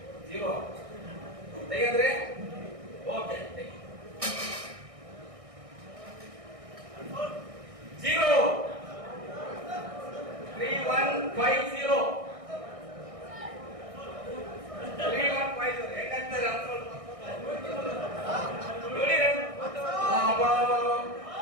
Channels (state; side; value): late; left; 1.6 ms